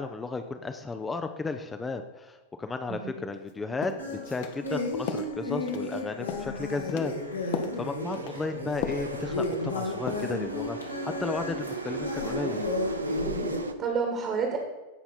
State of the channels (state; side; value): normal; both; correlation 0.17